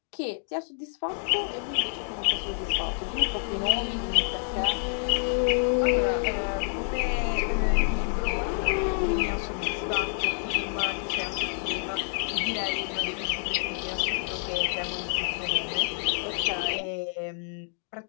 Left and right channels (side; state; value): right; silent; 57 dB below the other